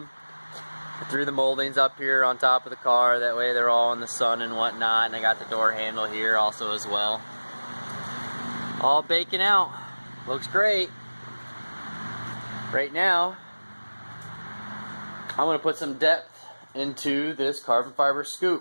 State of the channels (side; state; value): both; inverted; correlation -1.00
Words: I threw the moldings up here on top of the car, that way they're all in the sun and whatnot, and I got the door handle here also as well. All baking out. Looks great. Right now, I'm going to put some depth into this carbon fiber